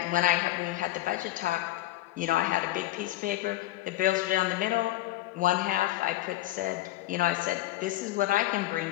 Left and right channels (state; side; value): quieter; right; 16.3 dB